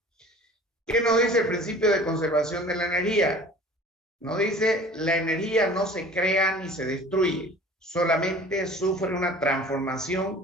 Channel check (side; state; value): both; normal; correlation 0.45